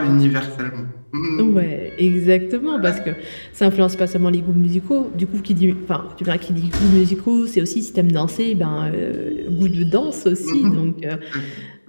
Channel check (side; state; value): both; inverted; correlation -1.00